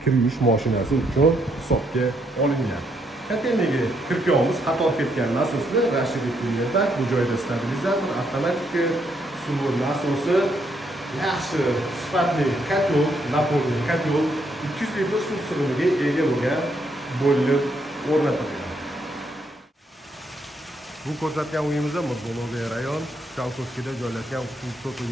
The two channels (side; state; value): both; normal; correlation 0.75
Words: kir yuvish mashinasi uchun hisobga olingan. Kotelniga kirpiyamiz qator ketgan nasoslar Rashidov kunlarda bu joyda stabilizator, avtomatik suv nasosi, yaxshi sifatli kotel, napolni kotel 200 litr suv sig'imiga ega bo'lgan bo'lib o'rnatilgan. Bu ko'rsatgan uyimizda Murdo'loviy rayon Chalkovskida joylashgan 3